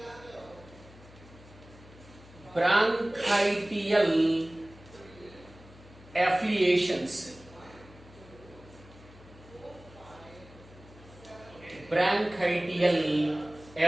bronchial affiliations. Bronchial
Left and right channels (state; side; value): noise; left; hum, 21 dB below the sound